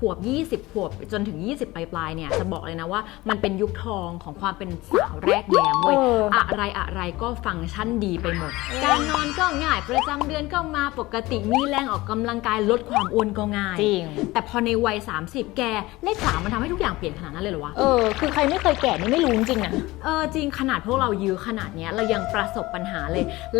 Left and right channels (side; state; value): right; quieter; 19.8 dB